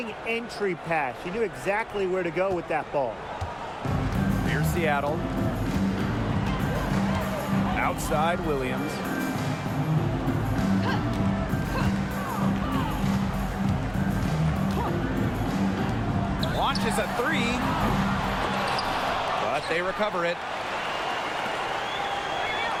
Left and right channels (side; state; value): both; identical; correlation 1.00